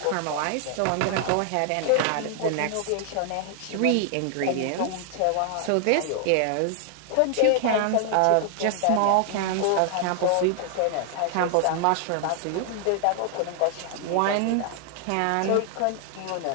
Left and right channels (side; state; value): both; different; correlation 0.00